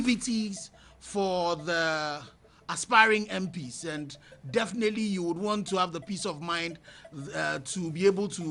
for the aspiring MPs, and definitely you would want to have the peace of mind to be able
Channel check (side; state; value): both; identical; correlation 1.00